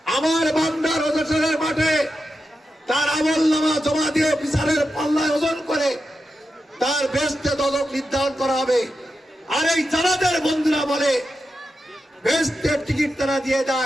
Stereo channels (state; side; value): normal; both; correlation 0.89